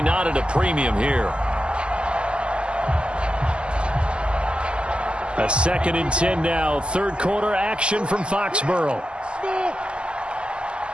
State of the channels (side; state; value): left; late; 0.051 ms